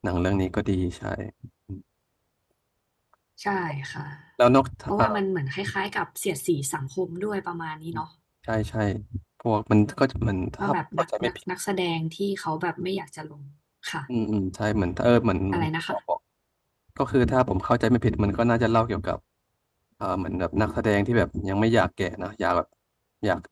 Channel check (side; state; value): both; identical; correlation 1.00